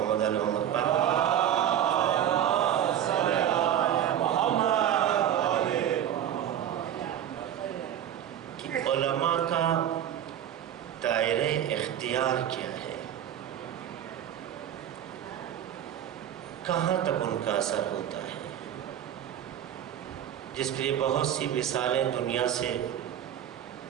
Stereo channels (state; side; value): quieter; left; 10.4 dB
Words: علی محمد پر، کہ علماء کا دائرہ اختیار کیا ہے، کہاں تک ان کا اثر ہوتا ہے، جس کے لیے بہت سی مثالیں دنیا سے